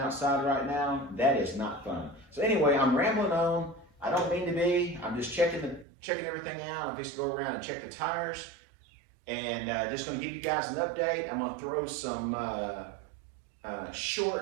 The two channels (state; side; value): drops out; left; at 5.9 s